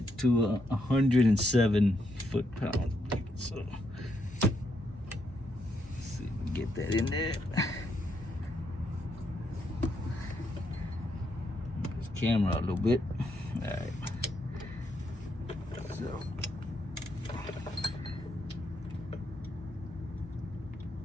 to 107 foot-pounds. So let's see if we can get that in there. This camera a little bit. All right. So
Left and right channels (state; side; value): normal; both; correlation 0.78